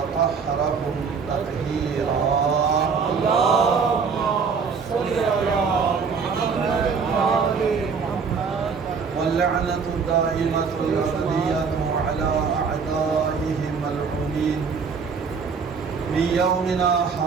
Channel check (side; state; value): left; quieter; 5.6 dB